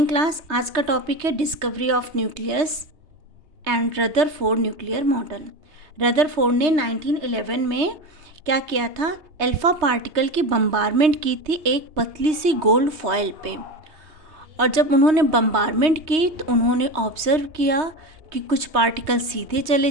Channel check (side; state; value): left; late; 3.2 ms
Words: class. आज का टॉपिक है discovery of nucleus and Rutherford nuclear model. Rutherford ने 1911 में क्या किया था, अल्फा पार्टिकल की बम्बारमेंट की थी एक पतली सी गोल्ड फॉयल पे। और जब उन्होंने बम्बारमेंट की तो उन्होंने ऑब्जर्व किया कि कुछ पार्टिकल सीधे